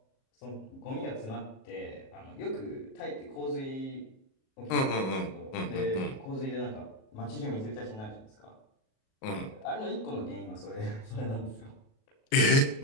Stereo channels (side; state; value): right; late; 37 ms